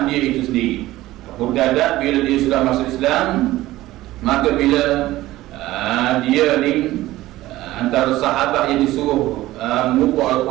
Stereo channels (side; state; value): left; quieter; 16.5 dB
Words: dia itu sendiri. Abu Darda bila dia sudah masuk Islam, maka bila dia ni antara sahabat yang disuruh mengumpul